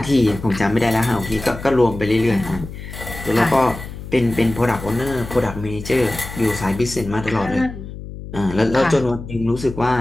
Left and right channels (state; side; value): noise; left; hum, 11 dB below the sound